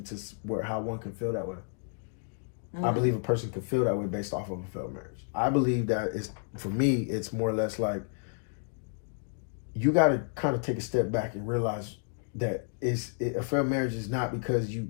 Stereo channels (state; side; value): silent; right; digital silence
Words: to how one can feel that way. I believe a person can feel that way based off of a failed marriage. I believe that for me, it's more or less like you got to kind of take a step back and realize that a failed marriage is not because